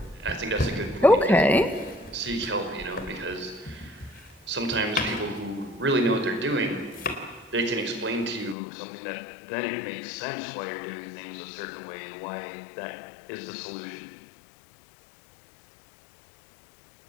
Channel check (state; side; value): drops out; right; at 8.6 s